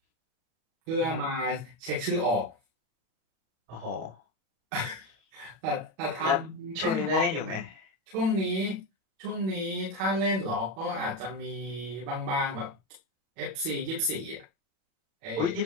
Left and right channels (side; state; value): left; late; 37 ms